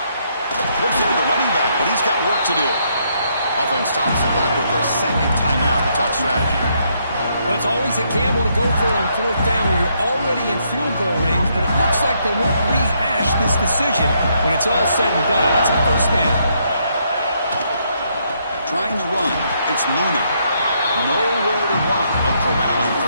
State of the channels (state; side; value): inverted; both; correlation -0.74